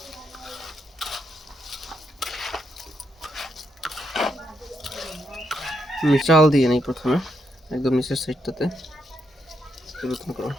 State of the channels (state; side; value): normal; both; correlation 0.79